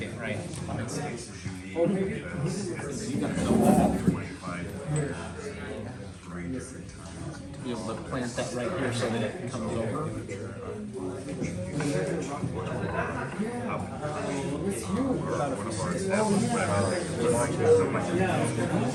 right? Be able to plant that right here so that it comes over.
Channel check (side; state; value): both; identical; correlation 1.00